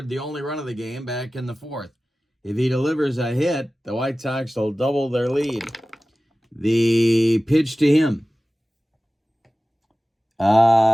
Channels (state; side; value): normal; both; correlation 0.96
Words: the only run of the game back in the 4th. If he delivers a hit, the White Sox will double their lead. The pitch to him